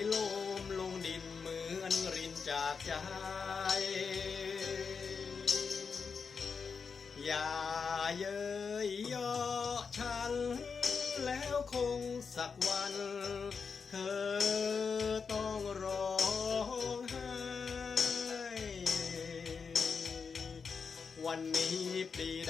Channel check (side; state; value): right; quieter; 5.6 dB